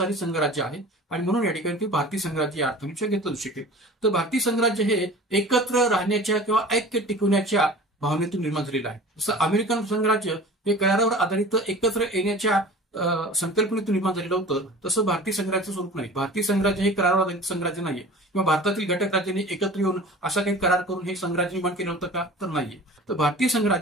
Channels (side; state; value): both; normal; correlation 0.40